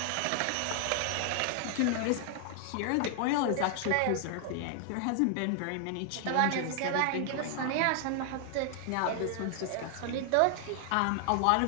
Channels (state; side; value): different; both; correlation 0.00